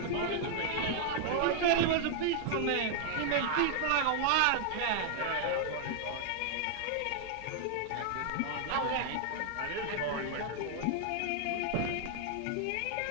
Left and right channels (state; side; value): different; both; correlation 0.00